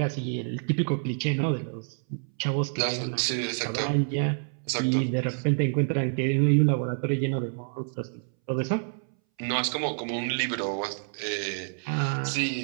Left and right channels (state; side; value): silent; left; 60 dB below the other